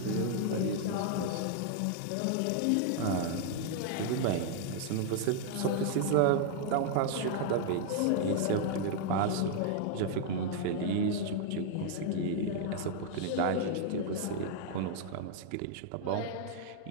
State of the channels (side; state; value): both; different; correlation -0.01